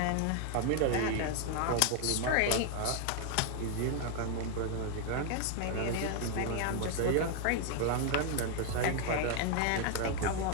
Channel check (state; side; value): different; both; correlation 0.00